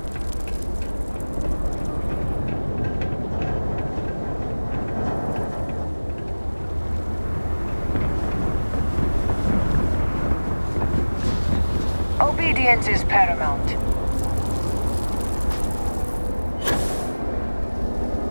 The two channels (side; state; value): both; inverted; correlation -1.00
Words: Obedience is paramount.